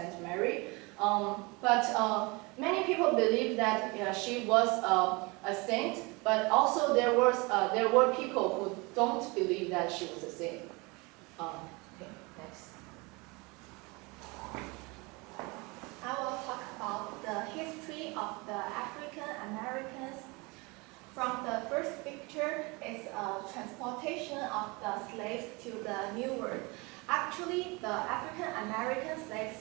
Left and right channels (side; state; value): left; quieter; 26.6 dB